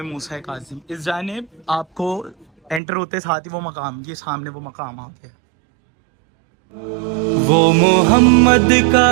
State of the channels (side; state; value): left; drops out; at 2.8 s